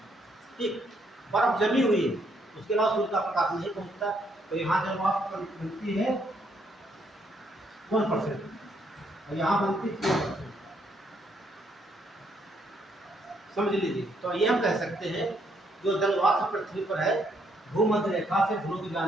ठीक, बर्फ जमी हुई है, उसके अलावा सूर्य का प्रकाश नहीं पहुंचता, तो यहाँ जब वाष्प बनती है 1% और यहाँ बनती है 4%, समझ लीजिए। तो ये हम कह सकते हैं जो जल वाष्प पृथ्वी पर है भूमध्य रेखा से ध्रुव की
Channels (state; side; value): normal; both; correlation 0.72